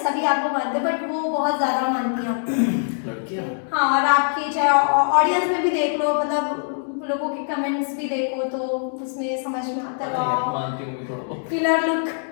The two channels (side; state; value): right; silent; digital silence